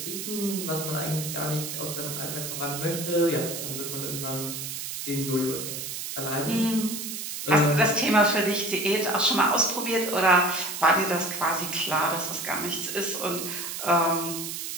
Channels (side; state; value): right; noise; hiss, 6 dB below the sound